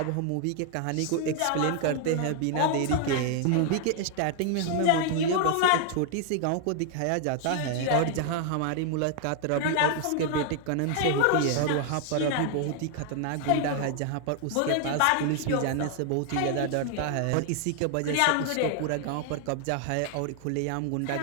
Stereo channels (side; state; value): both; different; correlation 0.00